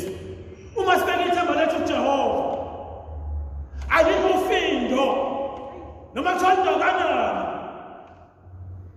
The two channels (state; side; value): identical; both; correlation 1.00